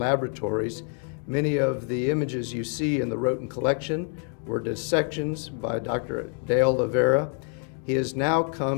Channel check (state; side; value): quieter; right; 37.7 dB